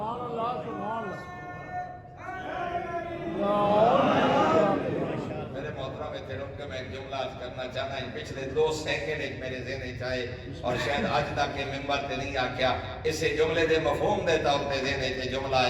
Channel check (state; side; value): identical; both; correlation 1.00